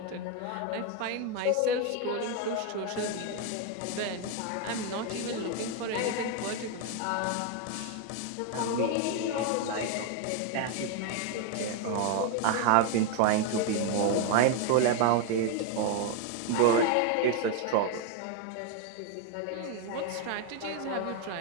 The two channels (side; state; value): both; different; correlation 0.01